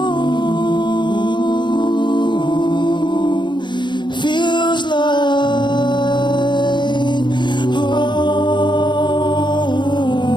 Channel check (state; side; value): late; right; 0.22 ms